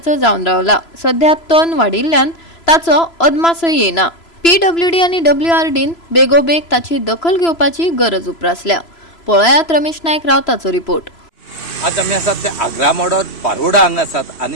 जावन रावला. सध्या तण वाडिल्ल्यान ताचो अदमासय येना. PWD आनी WRDन बेगोबेग ताची दखल घेवपाची गरज उप्रासल्या. पळयात रमेश नायक रावताचो रिपोर्ट. आज आमी आसात ते आग्रा मोडोर पारोडा हांगा आसात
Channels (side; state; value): right; late; 3.0 ms